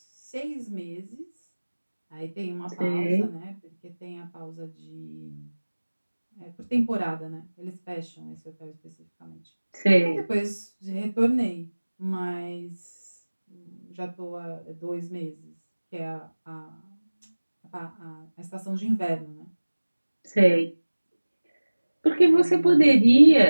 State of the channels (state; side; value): inverted; both; correlation -1.00